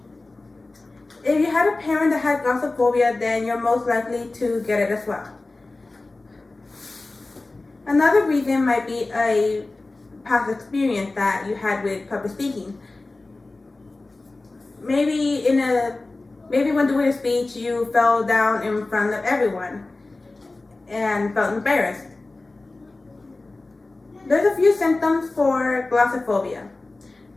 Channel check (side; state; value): right; quieter; 3.2 dB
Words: If you had a parent that had glossophobia, then you're most likely to get it as well. Another reason might be a past experience that you had with public speaking. Maybe when doing a speech, you fell down in front of everyone and felt embarrassed. There's a few symptoms for glossophobia.